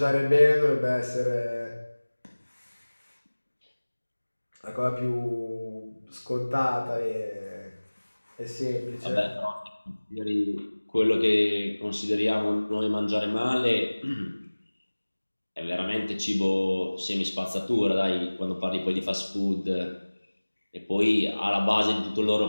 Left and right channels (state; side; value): inverted; both; correlation -1.00